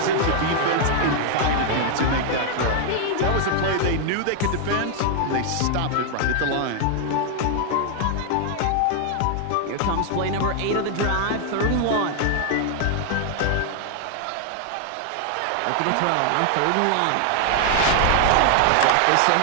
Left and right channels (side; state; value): both; different; correlation 0.00